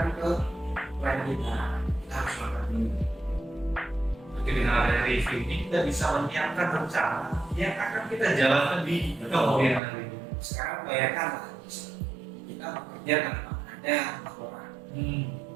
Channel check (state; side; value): drops out; left; at 9.8 s